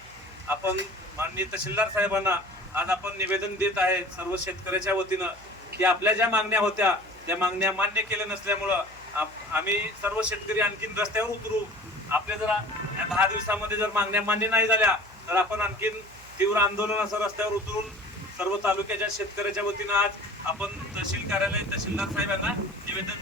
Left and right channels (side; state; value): right; noise; hum, 23 dB below the sound